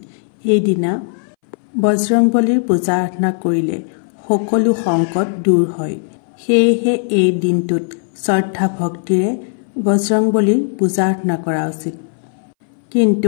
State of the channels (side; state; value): right; silent; 64 dB below the other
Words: এই দিনা বজৰংবলীৰ পূজা আৰাধনা কৰিলে সকলো সংকট দূৰ হয়। সেয়েহে এই দিনটোত শ্ৰদ্ধা ভক্তিৰে বজৰংবলীৰ পূজা আৰাধনা কৰা উচিত।